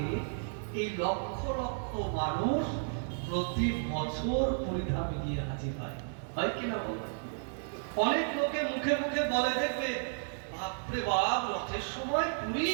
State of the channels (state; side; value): silent; left; digital silence